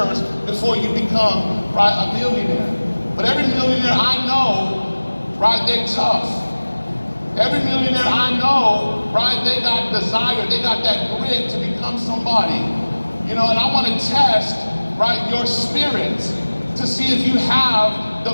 before you become, right, a millionaire. But every millionaire I know, right, they're tough. Every millionaire I know, right, they got desire, they got that grit to become somebody. You know, and I want to test, right, your spirit to see if you have the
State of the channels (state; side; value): inverted; both; correlation -1.00